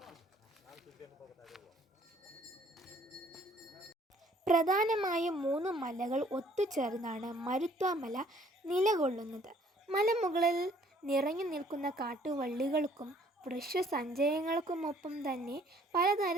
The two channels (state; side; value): normal; both; correlation 0.60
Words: പ്രധാനമായും 3 മലകൾ ഒത്തുചേർന്നാണ് മരുത്വ മല നിലകൊള്ളുന്നത്. മലമുകളിൽ നിറഞ്ഞു നിൽക്കുന്ന കാട്ടുവള്ളികൾക്കും വൃക്ഷസഞ്ചയങ്ങൾക്കുമൊപ്പം തന്നെ